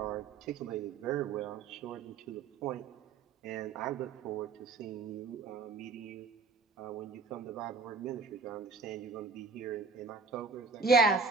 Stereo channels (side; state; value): left; quieter; 4.6 dB